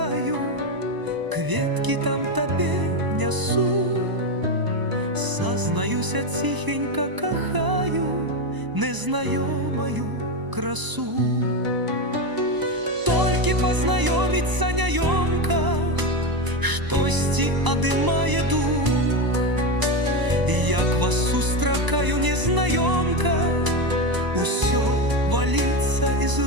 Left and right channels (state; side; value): late; left; 1.0 ms